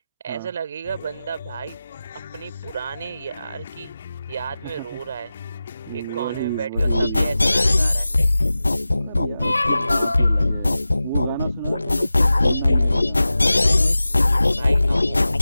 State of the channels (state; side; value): inverted; both; correlation -0.95